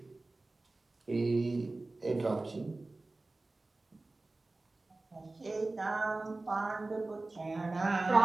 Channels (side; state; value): left; quieter; 3.1 dB